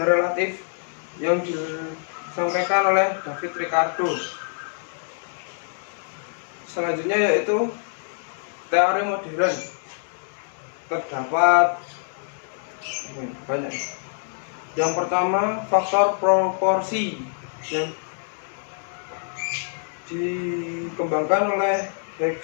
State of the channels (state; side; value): silent; right; digital silence